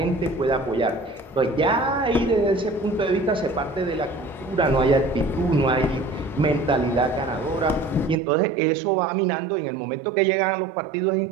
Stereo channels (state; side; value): drops out; left; at 8.2 s